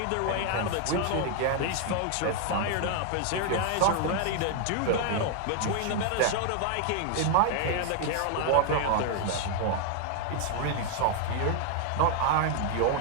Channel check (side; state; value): both; different; correlation 0.00